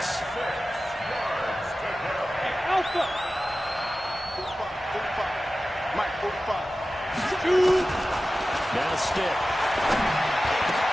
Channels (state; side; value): normal; both; correlation 0.95